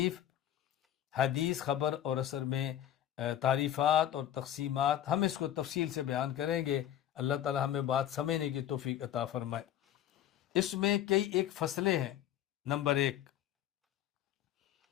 حدیث خبر اور اثر میں تعریفات اور تقسیمات، ہم اس کو تفصیل سے بیان کریں گے۔ اللہ تعالی ہمیں بات سمجھنے کی توفیق عطا فرمائے۔ اس میں کئی ایک فصلیں ہیں۔ نمبر 1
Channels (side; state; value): right; quieter; 11.5 dB